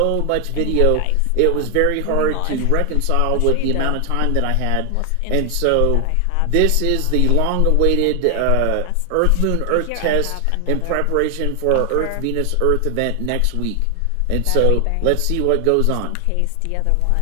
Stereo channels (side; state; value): both; different; correlation 0.00